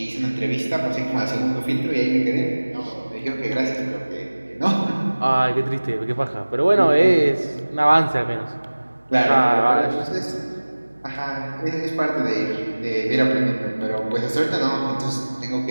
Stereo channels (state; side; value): inverted; both; correlation -1.00